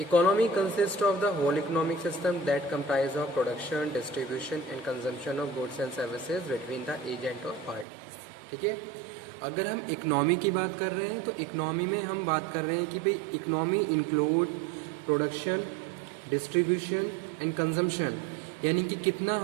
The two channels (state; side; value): drops out; left; at 7.9 s